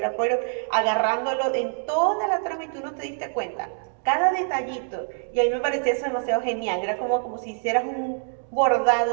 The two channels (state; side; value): silent; left; 62 dB below the other